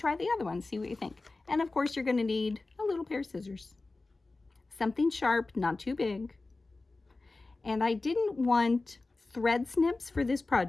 the other one, see what you think. And of course, you're going to need a little pair of scissors. Something sharp, not too big. And I didn't want thread snips for this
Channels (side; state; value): right; quieter; 3.4 dB